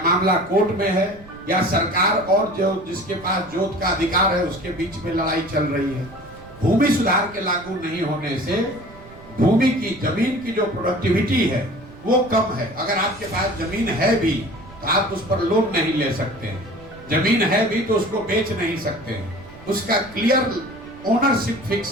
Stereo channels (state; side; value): noise; right; rumble, 21 dB below the sound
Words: मामला कोर्ट में है, या सरकार और जो जिसके पास जोत का अधिकार है उसके बीच में लड़ाई चल रही है। भूमि सुधार के लागू नहीं होने से भूमि की, जमीन की जो प्रोडक्टिविटी है वो कम है। अगर आपके पास जमीन है भी तो आप उस पर लोन नहीं ले सकते हैं, जमीन है भी तो उसको बेच नहीं सकते हैं, उसका क्लियर ओनरशिप